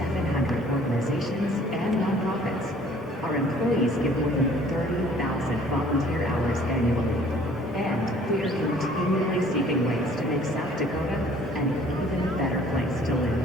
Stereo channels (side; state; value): both; normal; correlation 0.55